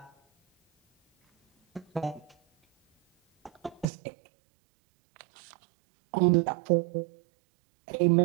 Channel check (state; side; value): drops out; left; at 3.9 s